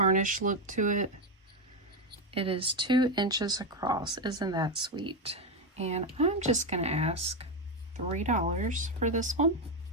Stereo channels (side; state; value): both; normal; correlation 0.09